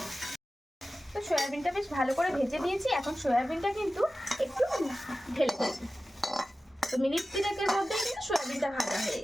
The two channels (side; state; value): both; normal; correlation 0.95